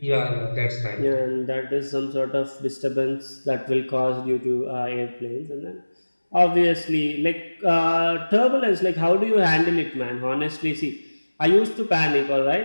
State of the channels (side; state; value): both; inverted; correlation -1.00